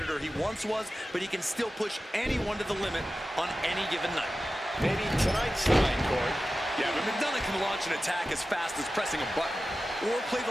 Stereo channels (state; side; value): normal; both; correlation 0.94